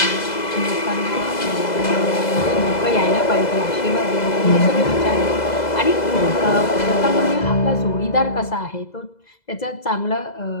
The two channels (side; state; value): right; late; 2.0 ms